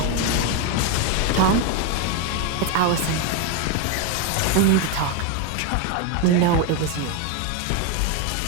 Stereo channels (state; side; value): different; both; correlation 0.02